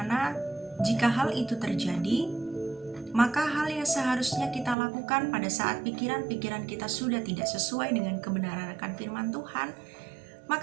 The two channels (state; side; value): drops out; left; at 4.8 s